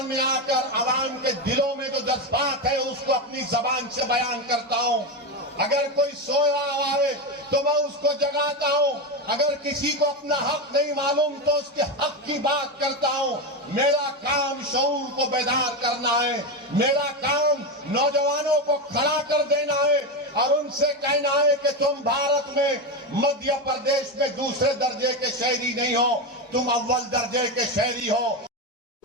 में आकर आवाम के दिलों में जो जज्बात है उसको अपनी जबान से बयान करता हूं। अगर कोई सोया हुआ है तो मैं उसको जगाता हूं, अगर किसी को अपना हक नहीं मालूम तो उसके हक की बात करता हूं। मेरा काम शऊर को बेदार करना है, मेरा काम नौजवानों को खड़ा कर देना है और उनसे कहना है कि तुम भारत में मध्य प्रदेश में दूसरे दर्जे के शहरी नहीं हो, तुम अव्वल दर्जे के शहरी हो।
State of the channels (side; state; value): both; normal; correlation 0.14